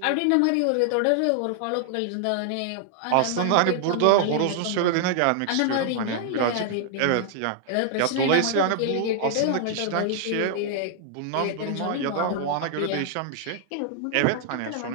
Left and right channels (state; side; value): different; both; correlation 0.00